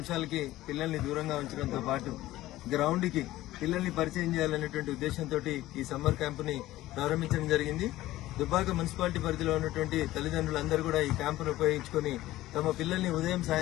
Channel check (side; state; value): right; quieter; 16.0 dB